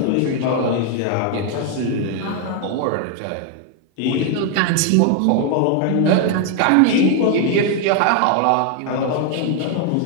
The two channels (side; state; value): both; different; correlation 0.00